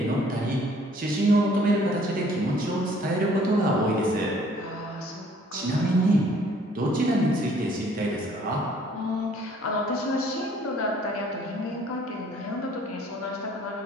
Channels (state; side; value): normal; both; correlation 0.59